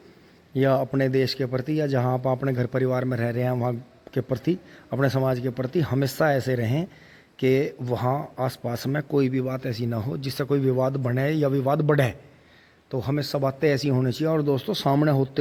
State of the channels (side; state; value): both; identical; correlation 1.00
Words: या अपने देश के प्रति या जहाँ आप अपने घर परिवार में रह रहे हैं वहाँ के प्रति, अपने समाज के प्रति हमेशा ऐसे रहें कि वहाँ आसपास में कोई भी बात ऐसी ना हो जिससे कोई विवाद बने या विवाद बढ़े। तो हमेशा बातें ऐसी होनी चाहिए। और दोस्तों सामने